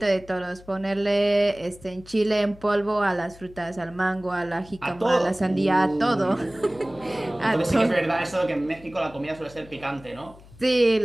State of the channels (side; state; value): left; noise; hum, 22 dB below the sound